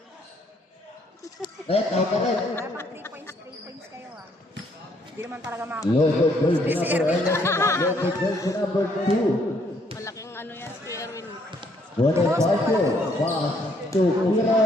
Out ka rin. Dapat 3 points kayo ah. Hindi naman talaga mga... Local jersey number 11. Local jersey number 2. Malaking ano yan, si Erwin. Bonifacio, pass to Pira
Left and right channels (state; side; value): normal; both; correlation 0.68